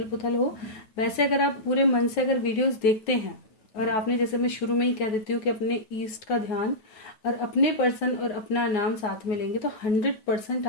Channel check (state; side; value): late; right; 9.2 ms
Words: पुथल हो, वैसे अगर आप पूरे मन से अगर वीडियोस देखते हैं, और आपने, जैसे मैं शुरू में ही कह देती हूँ कि अपने ईस्ट का ध्यान और अपने पर्सन और अपना नाम साथ में लेंगे, तो 100%